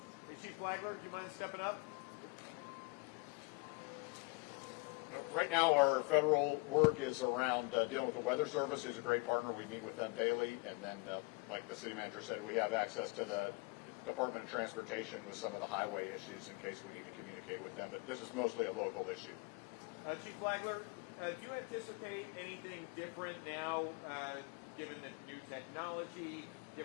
Hey, Chief Flagler, do you mind stepping up? Right now, our federal work is around dealing with the Weather Service, who's a great partner. We meet with them daily. And then, like the city manager said, we have access to the Department of Transportation with some of the highway issues in case we need to communicate with them. But this is mostly a local issue. Chief Flagler, do you anticipate anything different now, given the new technology,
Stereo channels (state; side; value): quieter; right; 28.0 dB